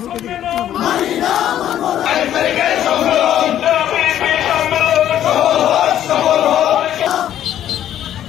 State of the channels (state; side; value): quieter; right; 11.3 dB